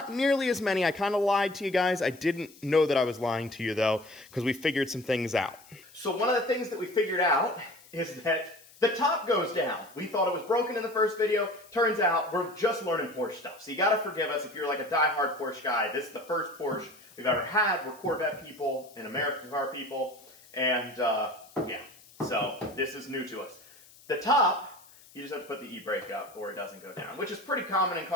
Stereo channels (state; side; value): noise; left; hiss, 24 dB below the sound